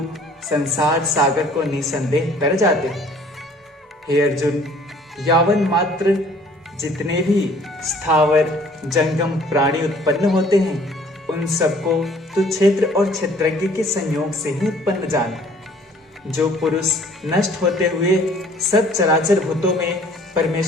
संसार सागर को निसंदेह तर जाते हैं। हे अर्जुन, यावन मात्र जितने भी स्थावर जंगम प्राणी उत्पन्न होते हैं उन सबको तो क्षेत्र और क्षेत्रज्ञ के संयोग से ही उत्पन्न जान। जो पुरुष नष्ट होते हुए सब चराचर भूतों में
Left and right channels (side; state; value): both; normal; correlation 0.55